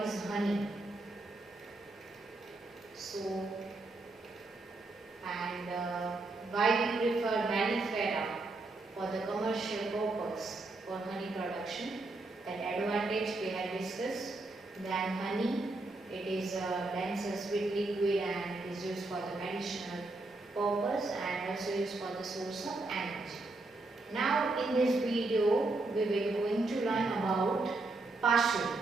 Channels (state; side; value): quieter; left; 3.2 dB